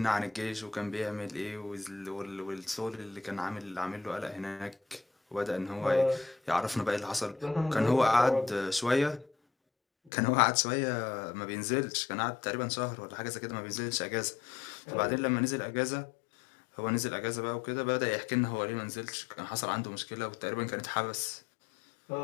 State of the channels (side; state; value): right; drops out; at 10.1 s